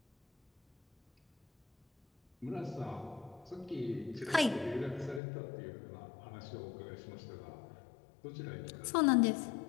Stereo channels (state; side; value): drops out; right; at 5.2 s